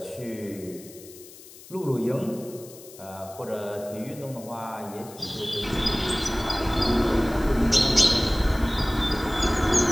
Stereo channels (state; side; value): noise; left; hiss, 19 dB below the sound